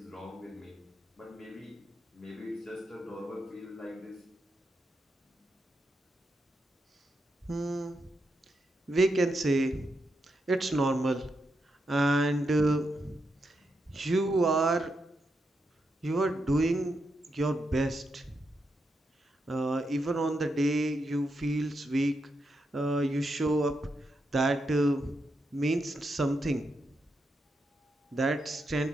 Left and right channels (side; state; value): both; normal; correlation 0.84